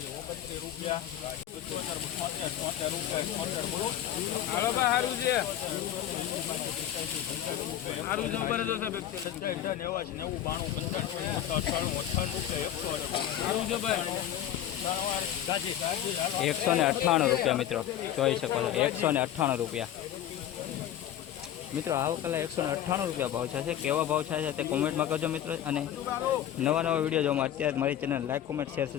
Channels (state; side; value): quieter; right; 11.3 dB